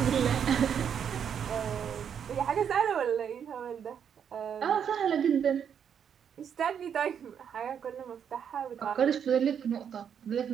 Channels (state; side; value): quieter; left; 8.0 dB